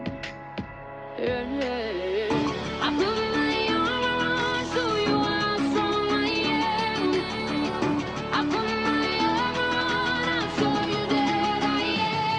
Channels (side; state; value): both; identical; correlation 1.00